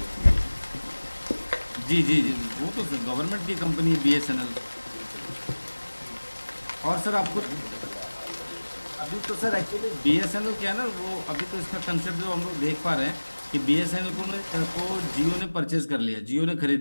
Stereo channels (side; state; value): both; inverted; correlation -1.00